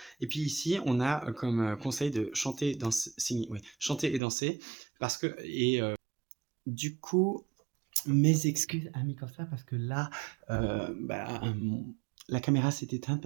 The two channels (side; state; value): left; drops out; at 4.2 s